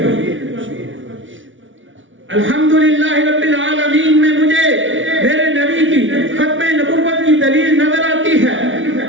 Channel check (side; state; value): left; late; 0.56 ms